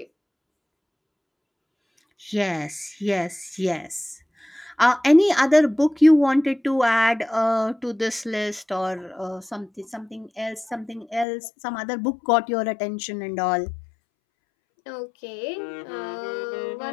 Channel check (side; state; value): right; drops out; at 11.2 s